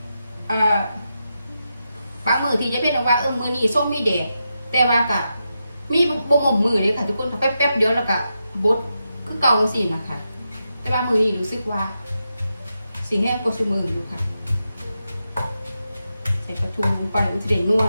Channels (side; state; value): both; inverted; correlation -0.87